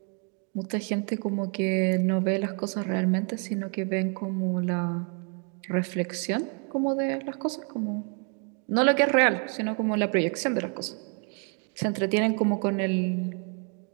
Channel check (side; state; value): left; quieter; 38.1 dB